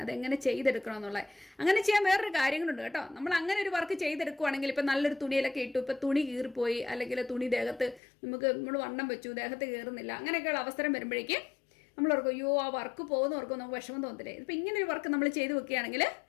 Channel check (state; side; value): drops out; right; at 8.0 s